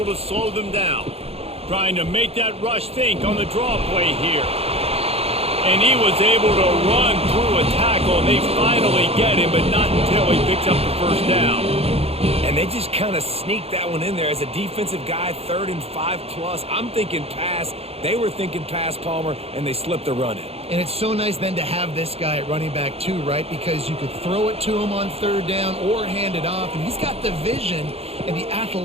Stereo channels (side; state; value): left; late; 0.29 ms